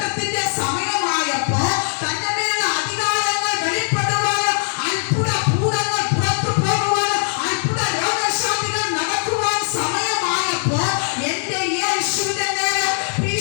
സമയമായപ്പോൾ, തന്റെ മേലുള്ള അധികാരങ്ങൾ വെളിപ്പെടുവാൻ, അത്ഭുത ഭൂതങ്ങൾ പുറത്തു പോകുവാൻ, അത്ഭുത രോഗശാന്തികൾ നടക്കുവാൻ സമയമായപ്പോൾ, എന്റെ യേശുവിന്റെ മേൽ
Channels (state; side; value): silent; right; 64 dB below the other